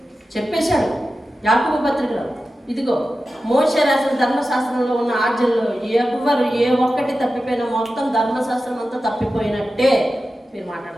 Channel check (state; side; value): normal; both; correlation 0.93